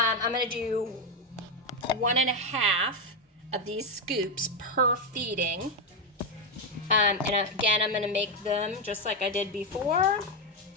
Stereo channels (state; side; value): normal; both; correlation 0.06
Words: gonna do 1.5 of these scoops per feeding. And again, I'm gonna make them just like I did before.